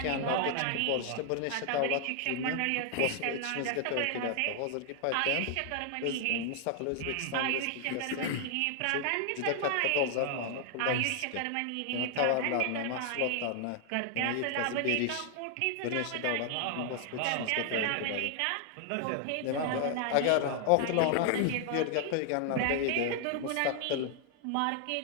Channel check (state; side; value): different; both; correlation 0.00